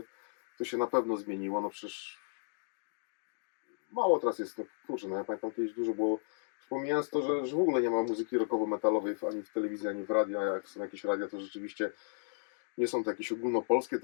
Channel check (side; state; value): right; silent; digital silence